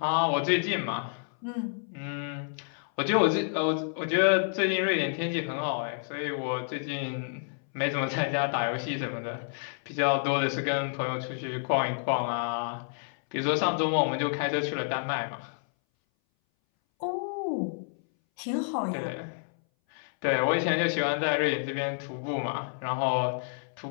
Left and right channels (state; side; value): silent; right; 58 dB below the other